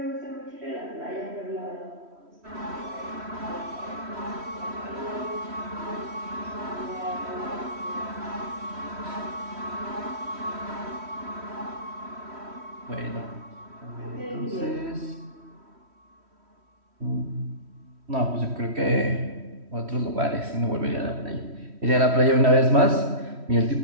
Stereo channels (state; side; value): late; left; 3.1 ms